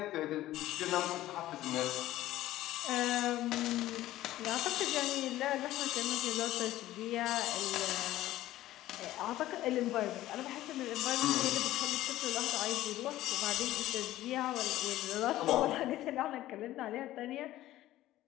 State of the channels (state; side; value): quieter; right; 15.0 dB